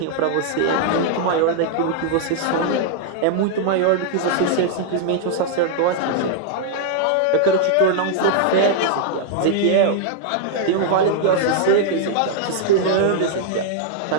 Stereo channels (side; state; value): both; different; correlation -0.01